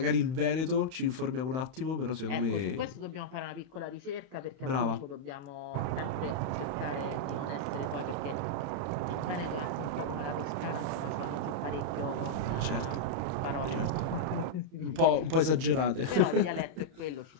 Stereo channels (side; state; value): left; late; 31 ms